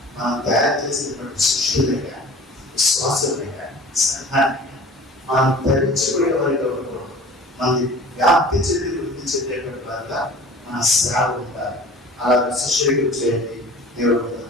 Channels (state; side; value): normal; both; correlation 0.43